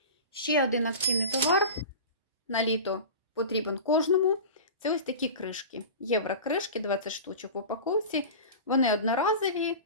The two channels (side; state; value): both; inverted; correlation -0.32